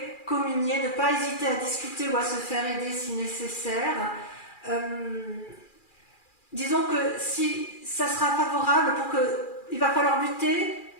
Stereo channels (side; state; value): right; late; 2.4 ms